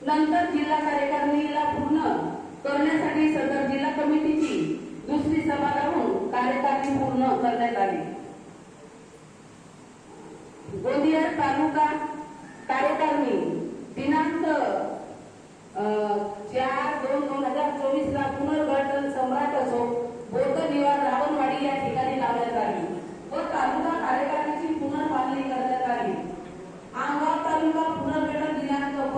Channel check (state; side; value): identical; both; correlation 1.00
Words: नंतर जिल्हा कार्यकारिणीला पूर्ण करण्यासाठी सदर जिल्हा कमिटीची दुसरी सभा लावून कार्यकारिणी पूर्ण करण्यात आली। गोंदिया तालुका कार्यकारिणी दिनांक 4/2/2024 ला पुनर्गठन सम्राट असो बौद्ध निवास रावणवाडी या ठिकाणी लावण्यात आली व तालुका कार्यकारिणीची पुनर्मांडणी करण्यात आली। आमगाव तालुका पुनर्गठन दिनांक